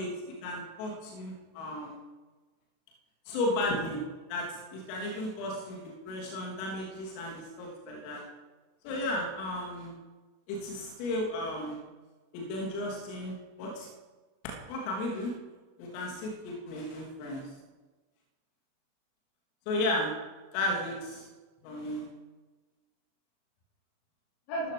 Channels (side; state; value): right; late; 37 ms